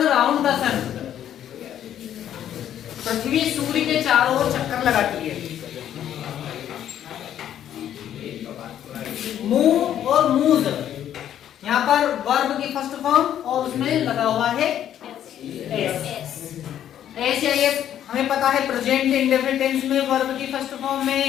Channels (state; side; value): quieter; right; 10.6 dB